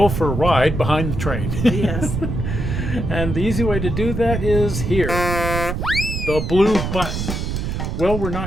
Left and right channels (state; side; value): noise; right; rumble, 3 dB below the sound